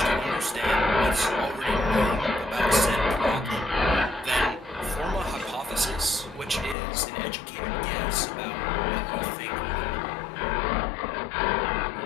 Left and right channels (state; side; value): drops out; right; at 6.8 s